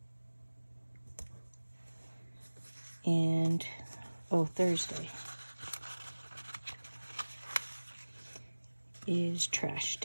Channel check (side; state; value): both; inverted; correlation -1.00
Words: And, oh, Thursday is trash